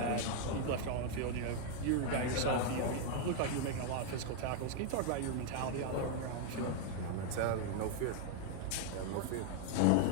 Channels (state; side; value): different; both; correlation 0.00